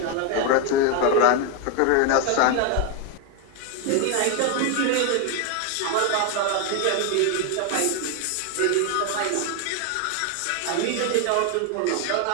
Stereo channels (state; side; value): different; both; correlation 0.01